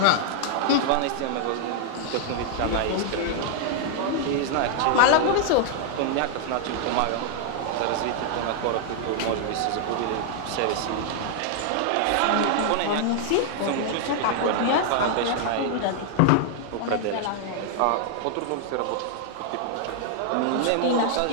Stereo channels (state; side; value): different; both; correlation 0.00